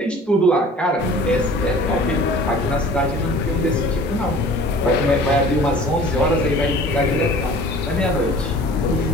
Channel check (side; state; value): both; normal; correlation 0.46